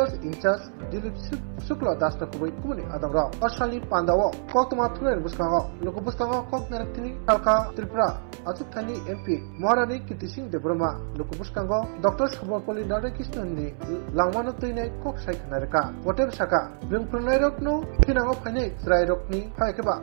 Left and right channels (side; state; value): left; silent; 61 dB below the other